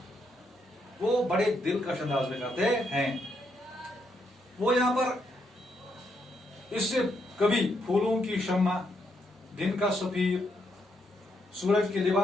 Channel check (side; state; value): both; normal; correlation 0.77